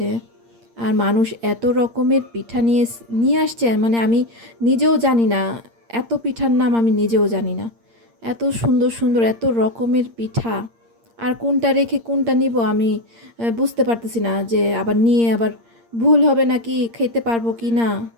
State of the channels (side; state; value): left; late; 8.7 ms